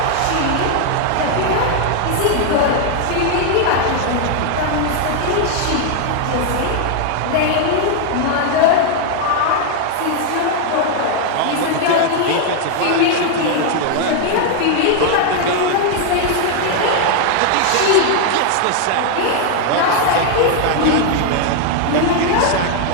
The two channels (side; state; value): both; different; correlation 0.00